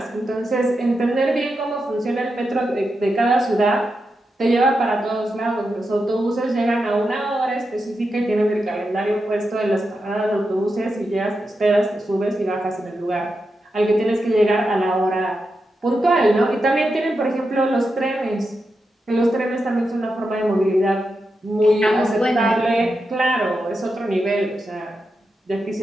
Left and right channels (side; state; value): both; normal; correlation 0.87